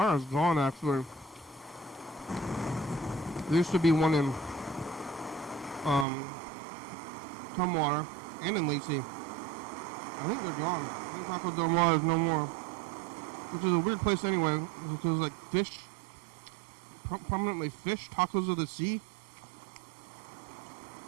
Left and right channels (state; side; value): drops out; left; at 6.1 s